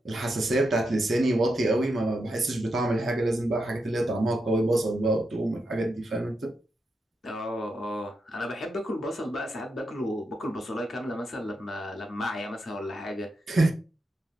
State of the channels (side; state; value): both; normal; correlation 0.85